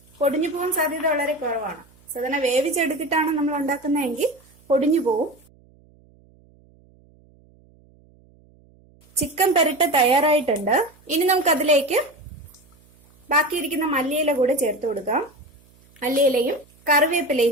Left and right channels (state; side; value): noise; right; hum, 30 dB below the sound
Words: പൊടിഞ്ഞു പോകാൻ സാധ്യത വളരെ കുറവാണ്. സാധാരണ വേവിച്ചെടുത്തിട്ടാണ് നമ്മൾ ഉണ്ടാക്കുന്നതെങ്കിൽ പൊടിഞ്ഞു പോവും. ചിക്കൻ പെരട്ട് തയ്യാറായിട്ടുണ്ട്. ഇനി നമുക്ക് അതിലേക്ക് ബാക്കിയിരിക്കുന്ന മല്ലിയില കൂടെ ചേർത്ത് കൊടുക്കാം. മല്ലിയിലയും കറിവേപ്പിലയും